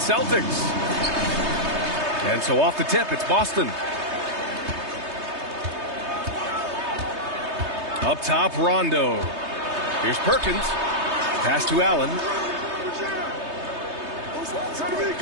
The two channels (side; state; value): left; late; 3.2 ms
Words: And so off the tip, it's Boston. Up top, Rondo. Here's Perkins. Pass to Allen.